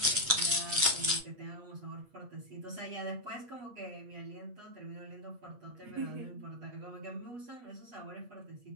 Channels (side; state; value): left; late; 8.3 ms